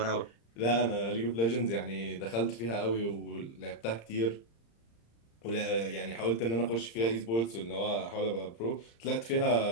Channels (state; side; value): late; right; 35 ms